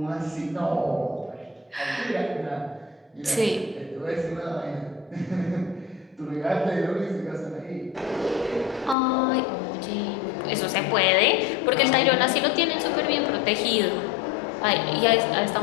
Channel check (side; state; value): right; drops out; at 9.0 s